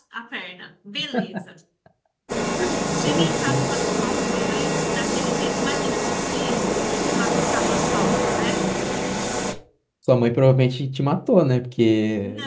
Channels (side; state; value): both; identical; correlation 1.00